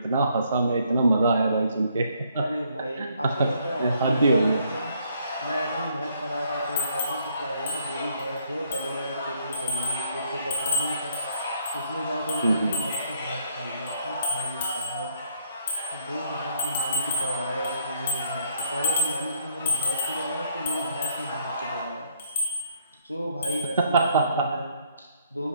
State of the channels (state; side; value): inverted; both; correlation -0.69